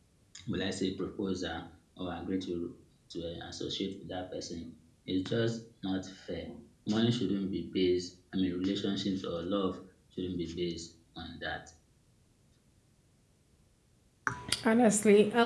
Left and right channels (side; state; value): both; identical; correlation 1.00